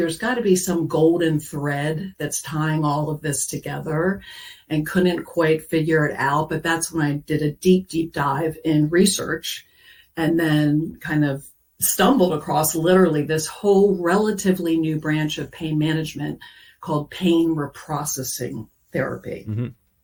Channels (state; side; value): identical; both; correlation 1.00